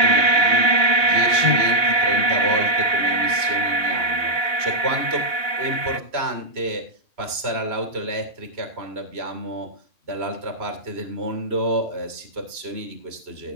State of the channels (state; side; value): late; left; 2.8 ms